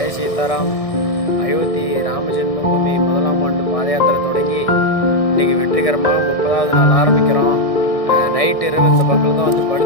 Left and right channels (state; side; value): late; right; 1.6 ms